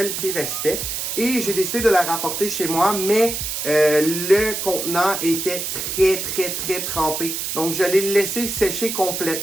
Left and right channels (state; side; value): noise; right; hiss, 3 dB below the sound